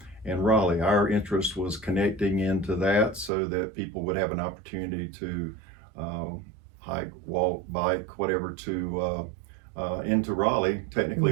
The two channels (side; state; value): left; drops out; at 3.3 s